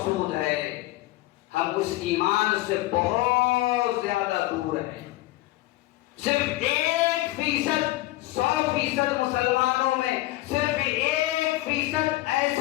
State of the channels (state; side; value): quieter; right; 17.9 dB